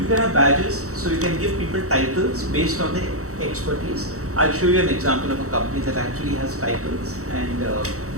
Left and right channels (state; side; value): late; left; 0.65 ms